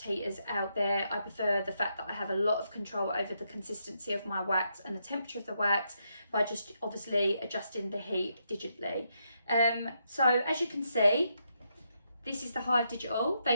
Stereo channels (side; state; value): both; inverted; correlation -0.79